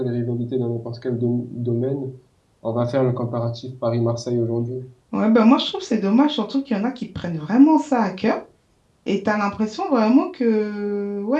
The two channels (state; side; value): identical; both; correlation 1.00